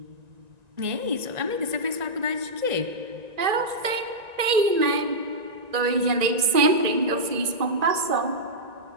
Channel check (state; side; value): late; left; 1.9 ms